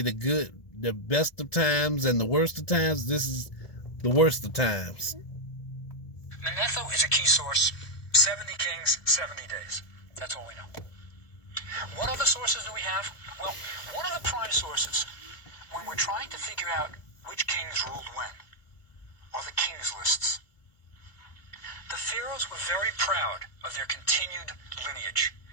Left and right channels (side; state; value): right; late; 2.4 ms